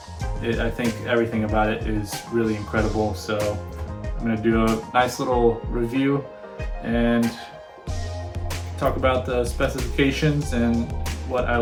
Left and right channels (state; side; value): identical; both; correlation 1.00